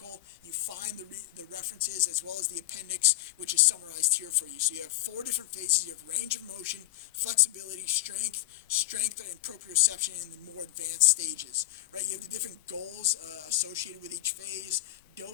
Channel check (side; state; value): right; quieter; 17.0 dB